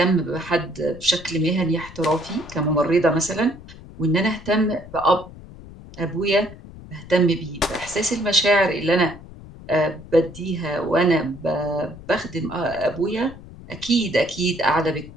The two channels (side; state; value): left; noise; rumble, 17 dB below the sound